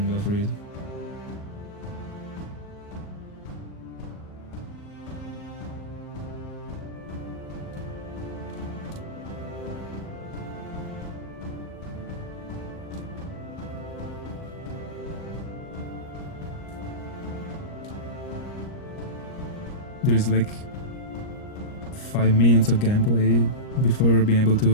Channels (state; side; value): late; right; 38 ms